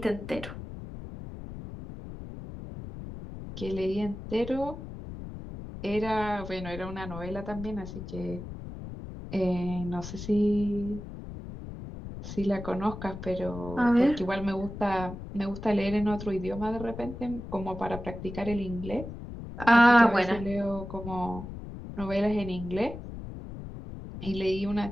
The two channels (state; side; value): noise; left; rumble, 10 dB below the sound